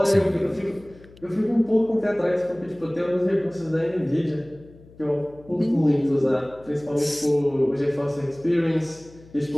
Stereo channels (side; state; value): left; noise; hum, 23 dB below the sound